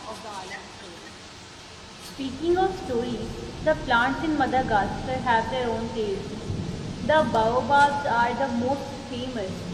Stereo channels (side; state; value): both; identical; correlation 1.00